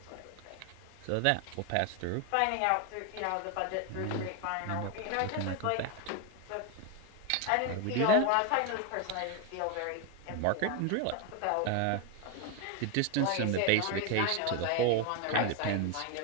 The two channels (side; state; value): both; different; correlation 0.01